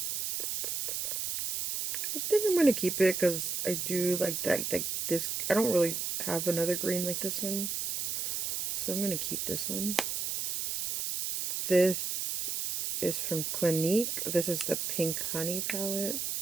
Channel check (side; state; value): right; noise; hiss, 2 dB below the sound